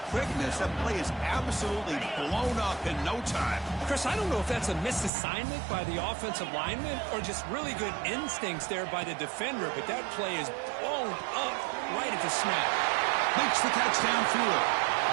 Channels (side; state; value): left; drops out; at 5.1 s